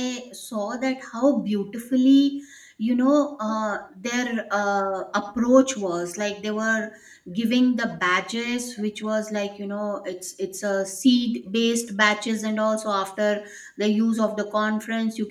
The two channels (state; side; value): identical; both; correlation 1.00